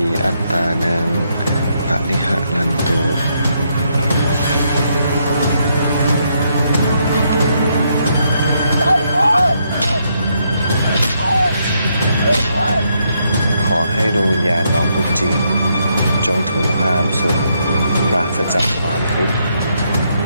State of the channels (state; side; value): inverted; both; correlation -0.76